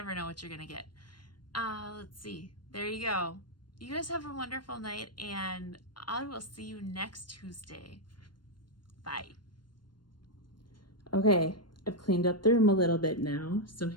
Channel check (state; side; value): late; right; 0.72 ms